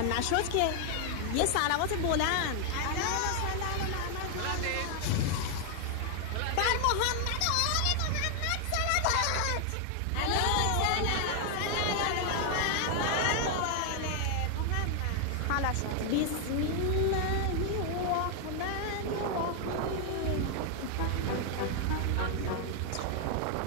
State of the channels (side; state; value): both; different; correlation 0.00